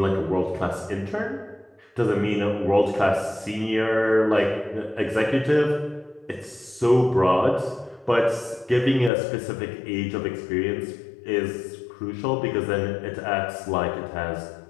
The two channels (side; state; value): right; drops out; at 9.1 s